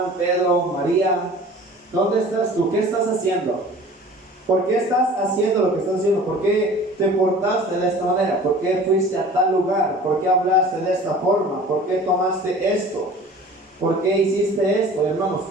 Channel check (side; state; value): both; normal; correlation 0.44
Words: Pedro, María, ¿dónde estás tú? ¿Qué estás haciendo? ¿Por qué estás haciendo lo que estás haciendo? ¿Por qué te portaste de esta manera? ¿Por qué fuiste a tal lugar? ¿Por qué hablaste de esta forma? ¿Por qué tomaste esto? ¿Por qué hiciste esto, hermanos?